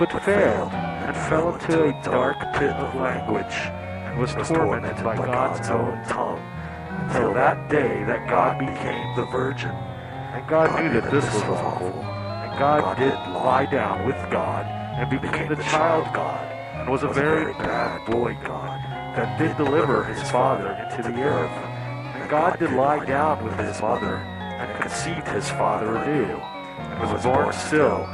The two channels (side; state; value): both; identical; correlation 1.00